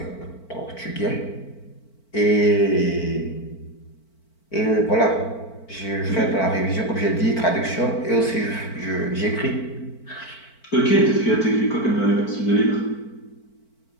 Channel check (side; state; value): right; late; 4.5 ms